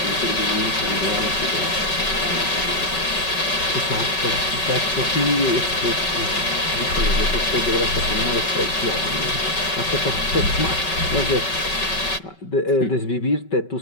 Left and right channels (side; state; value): right; late; 5.3 ms